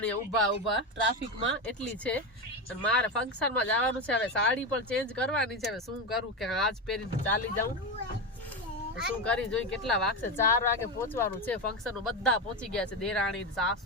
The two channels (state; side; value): normal; both; correlation 0.15